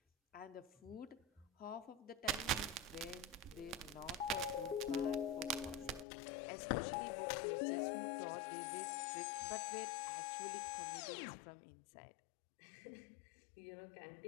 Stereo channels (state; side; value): drops out; right; at 6.1 s